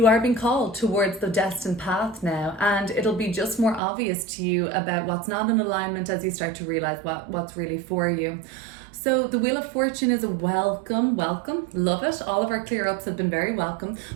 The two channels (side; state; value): left; drops out; at 3.8 s